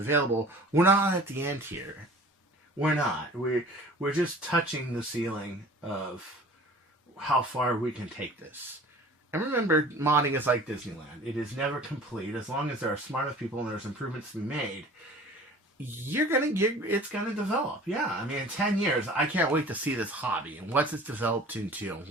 we're not at the end here. We're not. We're just touching the ceiling of how far we can take this. And remember, modding is like Disneyland. It is never complete. As long as there are smart enough people and there's improvements to be made, it's gonna develop. Yeah, I mean, in 10 years, I can't wait to see this hobby and what's it's developed into and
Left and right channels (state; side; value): normal; both; correlation 0.45